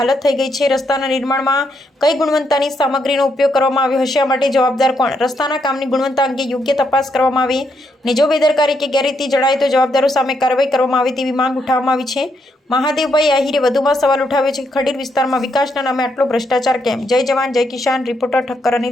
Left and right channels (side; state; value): both; normal; correlation 0.77